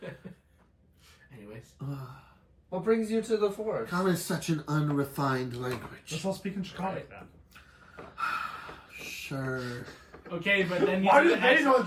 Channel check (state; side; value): identical; both; correlation 1.00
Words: Anyways. What brings you to the forest? Common is such an unrefined Let's language. all speak in Draconic then. Sure. Okay, but then you Why have do to they ask- know